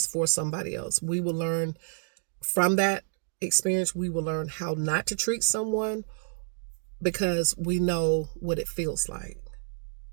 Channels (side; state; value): left; silent; digital silence